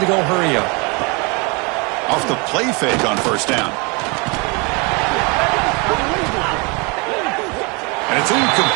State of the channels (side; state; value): left; quieter; 30.3 dB